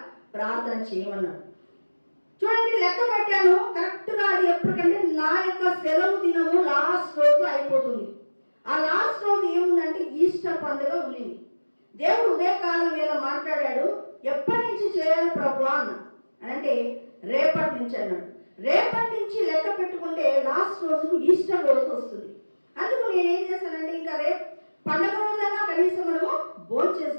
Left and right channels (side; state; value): both; inverted; correlation -1.00